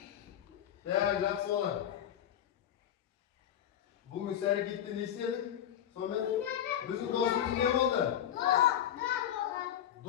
Değerli soğan. Bugün sen gittin istedik. Sonra bizim dostumuz ne oldu?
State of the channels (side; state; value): right; quieter; 10.6 dB